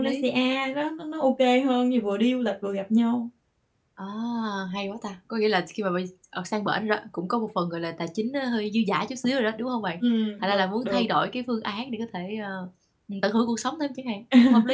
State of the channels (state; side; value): identical; both; correlation 1.00